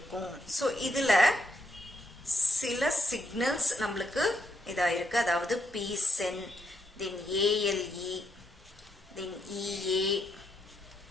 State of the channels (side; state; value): both; normal; correlation 0.78